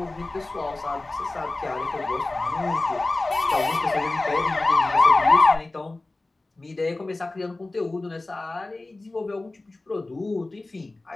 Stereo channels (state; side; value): quieter; right; 3.0 dB